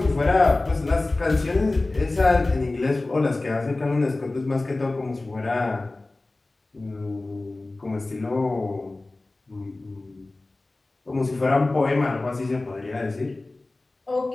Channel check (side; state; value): right; quieter; 3.0 dB